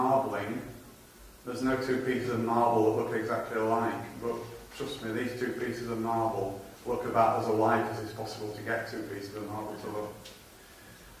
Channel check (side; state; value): both; identical; correlation 1.00